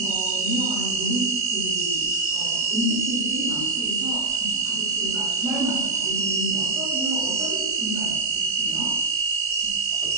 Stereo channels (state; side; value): quieter; left; 3.7 dB